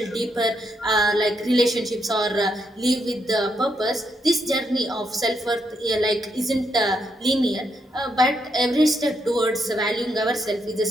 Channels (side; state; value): both; normal; correlation 0.78